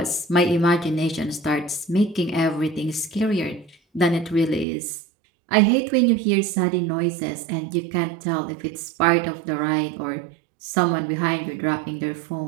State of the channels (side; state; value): left; drops out; at 4.7 s